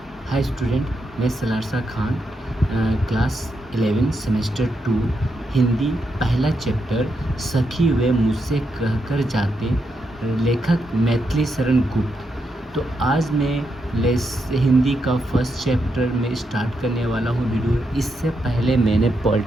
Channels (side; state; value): both; normal; correlation 0.82